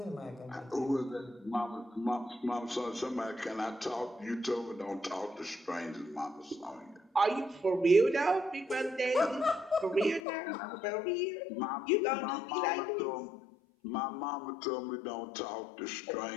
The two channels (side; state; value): right; drops out; at 10.2 s